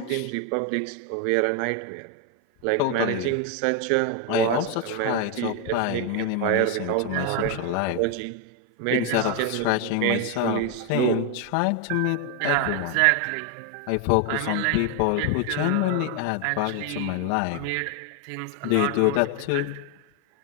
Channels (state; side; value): different; both; correlation 0.01